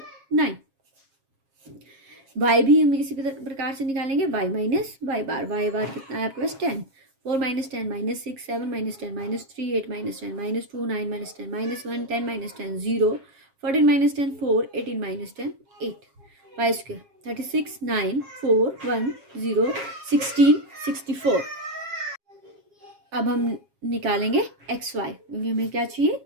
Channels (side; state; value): left; late; 7.4 ms